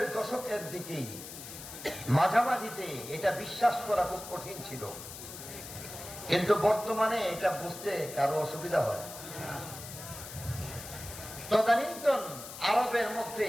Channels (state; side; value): noise; left; hiss, 12 dB below the sound